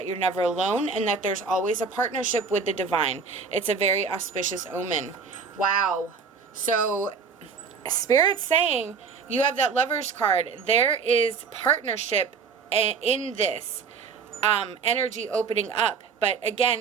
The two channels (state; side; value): quieter; left; 5.4 dB